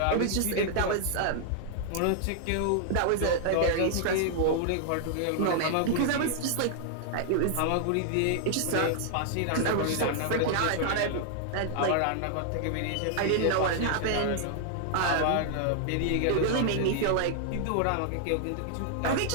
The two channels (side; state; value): both; different; correlation -0.01